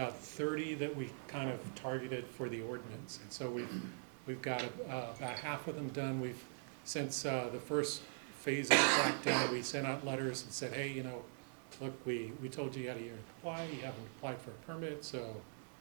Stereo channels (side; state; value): left; silent; digital silence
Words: 30 that we kind of targeted for the ordinance. And so we've got about half of them done. We've, since the first phase of the crackdown, we sent out letters and said, hey, you know, look, we told you had a year to apply, you haven't applied for a permit, so,